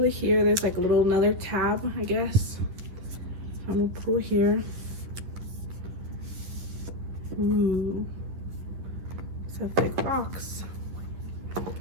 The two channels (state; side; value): late; left; 11 ms